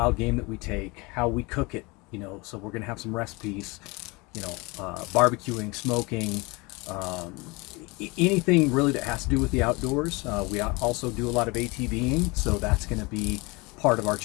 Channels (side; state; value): right; quieter; 25.9 dB